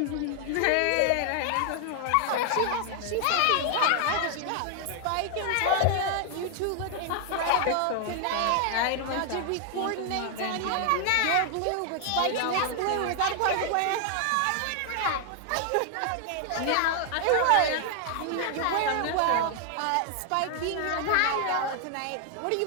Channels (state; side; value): different; both; correlation 0.00